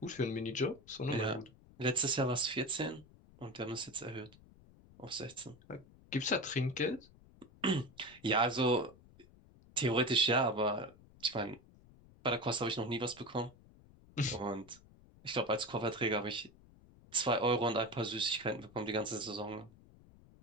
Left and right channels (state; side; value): noise; left; rumble, 24 dB below the sound